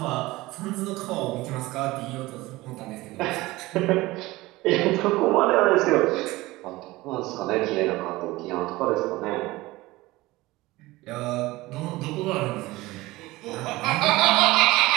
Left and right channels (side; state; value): left; quieter; 19.6 dB